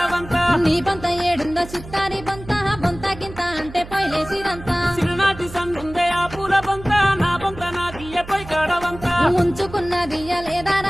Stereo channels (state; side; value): noise; right; hum, 15 dB below the sound